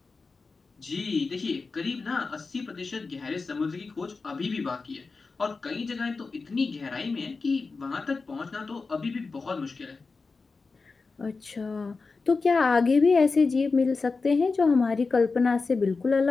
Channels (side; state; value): right; quieter; 4.2 dB